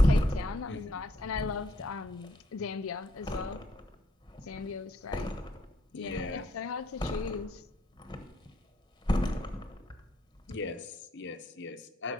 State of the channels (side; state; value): both; normal; correlation 0.71